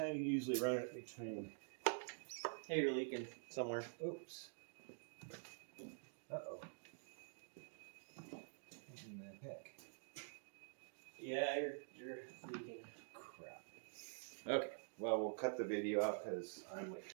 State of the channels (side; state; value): left; silent; digital silence